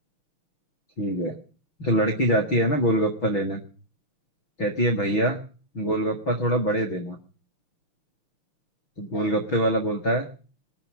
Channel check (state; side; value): late; right; 6.2 ms